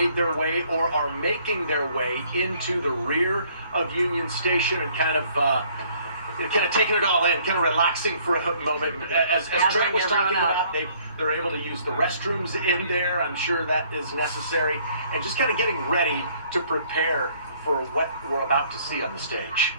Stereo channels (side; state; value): both; inverted; correlation -0.61